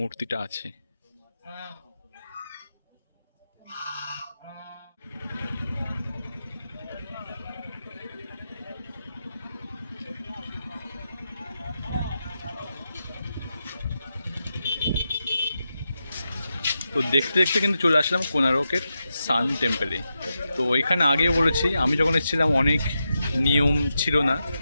আছে। তো দেখতে দেখতে কিন্তু চলে আসলাম কোনারকের সান টেম্পলে। তো এখানে আগেও বলেছি, আমি যখন এসেছিলাম অনেক নিয়ম ছিল না,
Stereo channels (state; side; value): inverted; both; correlation -0.88